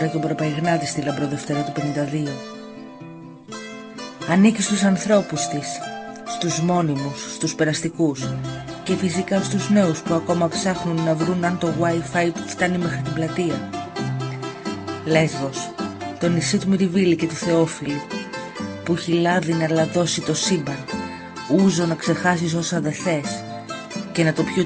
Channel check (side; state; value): both; identical; correlation 1.00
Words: και ο Προπαϊγνάτη στη Λαμπροδευτέρα του 52. Ανήκει στους ανθρώπους της, στους μόνιμους, στους περαστικούς και φυσικά στους νέους που ακόμα ψάχνουν να βρουν αν το Wi-Fi φτάνει μέχρι την πλατεία. Λέσβος, το νησί του Μυριβίλη και του Θεόφιλου, που έχει λάδι να λαδώσει το σύμπαν, ούζο να ξεχάσεις όσα δε θες και να το πιει ο